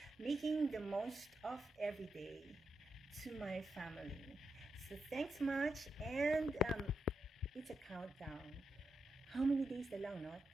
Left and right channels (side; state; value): both; normal; correlation 0.85